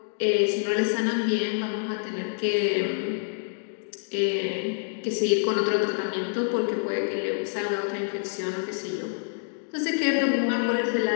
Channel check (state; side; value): silent; right; digital silence